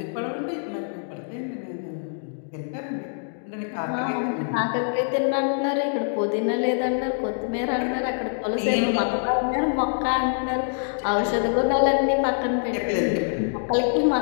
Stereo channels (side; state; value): right; silent; digital silence